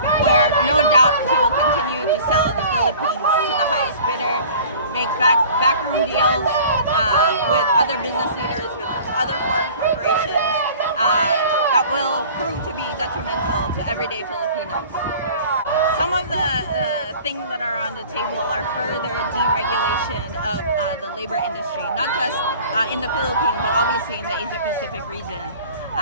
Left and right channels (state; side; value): inverted; both; correlation -0.45